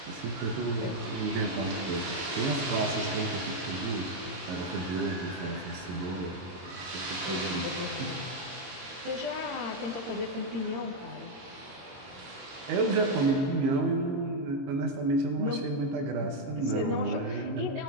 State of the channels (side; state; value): left; late; 22 ms